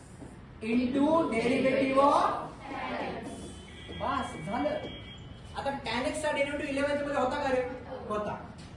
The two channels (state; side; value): identical; both; correlation 1.00